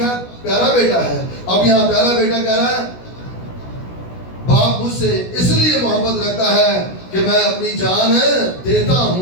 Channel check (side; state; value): right; late; 16 ms